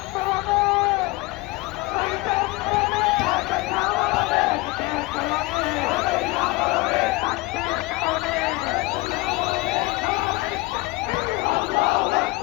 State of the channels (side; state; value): right; quieter; 22.3 dB